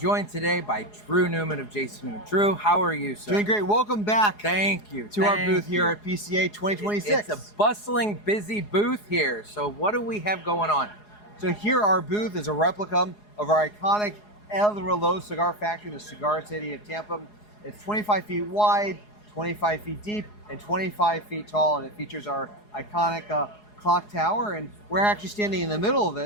today by Drew Newman of Jason Newman. Drew, how are you, sir? Doing great. Welcome back Thank you. to our booth here at PCA 2026. It's a bustling, busy booth here. So what do we have going on? So here our booth is a replica of our iconic El Reloj cigar factory in the Cigar City of Tampa. It's 25 feet wide, 25 feet deep, and 25 feet tall, and it features our iconic clock tower, and we're actually standing in the middle of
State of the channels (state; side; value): late; right; 4.8 ms